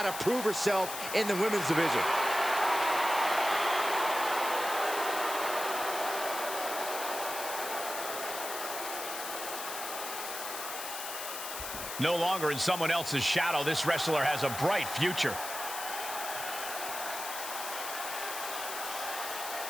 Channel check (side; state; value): left; noise; hiss, 7 dB below the sound